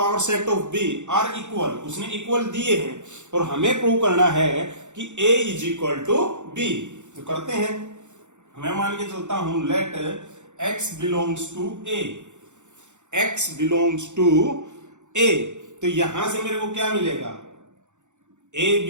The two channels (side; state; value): left; late; 0.84 ms